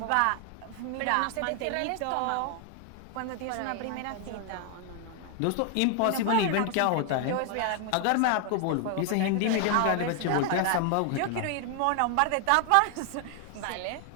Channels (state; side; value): different; both; correlation 0.00